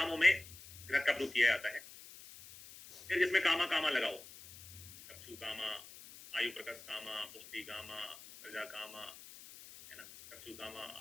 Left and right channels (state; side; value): noise; left; hiss, 17 dB below the sound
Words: में घृत का प्रयोग किया जाता है। फिर जिसमें कामा कामा लगाओ, चक्षु कामा, आयु प्रकाश कामा, पुष्टि कामा, प्रजा कामा, है ना, चक्षु कामा,